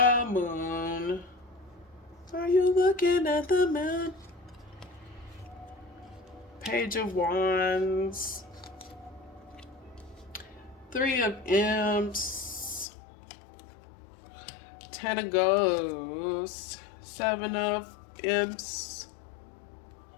moon. Are you looking at the moon? Page of Wands. Three of Imps. Ten of Ghosts. Seven of Imps.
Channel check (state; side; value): drops out; right; at 12.9 s